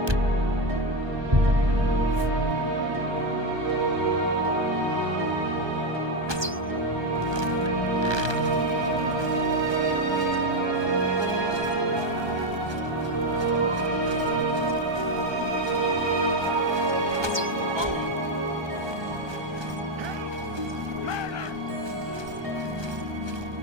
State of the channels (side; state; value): left; late; 1.2 ms